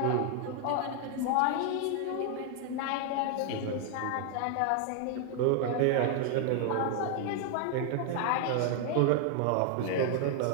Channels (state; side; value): different; both; correlation 0.00